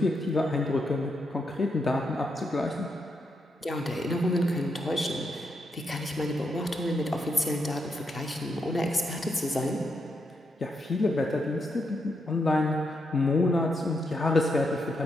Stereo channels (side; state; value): both; normal; correlation 0.81